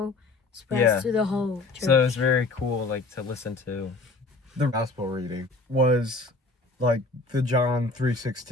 spreads Yeah. to the whole church. So it's very cool, like to listen to. The gospel reading was like the John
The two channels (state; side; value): quieter; right; 3.4 dB